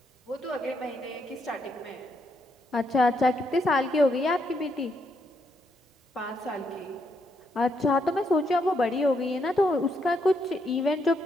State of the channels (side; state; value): both; normal; correlation 0.77